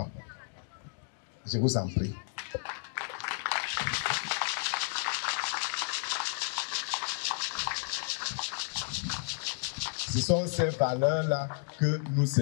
Je vous en prie. Ce sont ces valeurs-là que nous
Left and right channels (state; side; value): silent; right; 56 dB below the other